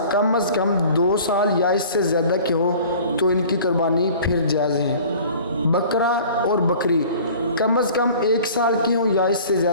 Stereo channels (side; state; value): both; inverted; correlation -0.46